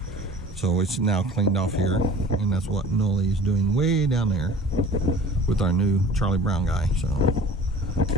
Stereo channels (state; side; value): normal; both; correlation 0.45